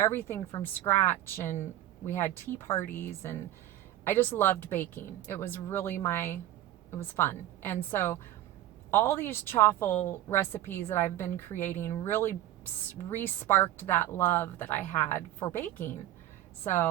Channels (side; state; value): left; quieter; 13.6 dB